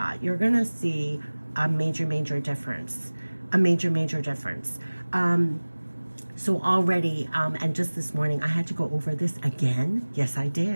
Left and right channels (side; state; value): both; inverted; correlation -1.00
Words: You're gonna see a major difference. A major difference. So already, and just this morning, I had to go over this again. Yes, I